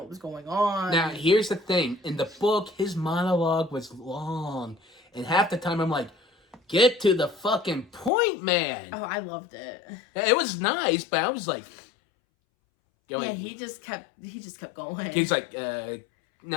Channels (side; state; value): right; drops out; at 8.1 s